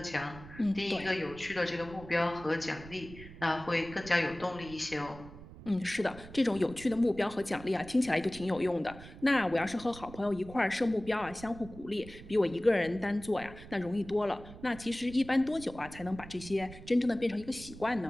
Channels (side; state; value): right; noise; rumble, 16 dB below the sound